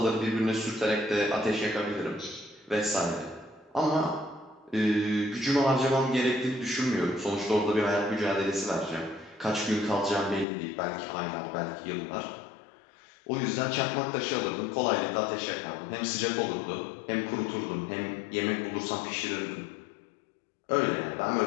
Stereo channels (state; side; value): drops out; right; at 10.5 s